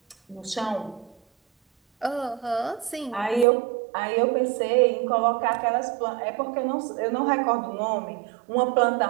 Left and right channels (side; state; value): left; drops out; at 3.5 s